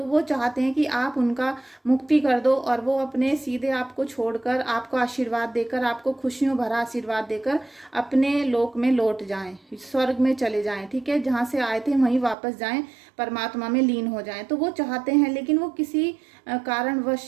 वो चाहते हैं कि आप उनका मुक्ति कर दो, और वो अपने सीधे आपको छोड़कर, आपको आशीर्वाद देकर, आपको खुशियों भरा आशीर्वाद देकर अपने लोक में लौट जाएं, स्वर्ग में चले जाएं। ठीक है, जहां से आए थे वहीं वापस जाएं, परमात्मा में लीन हो जाएं। तो वो चाहते हैं, लेकिन वो किसी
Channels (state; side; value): drops out; left; at 12.4 s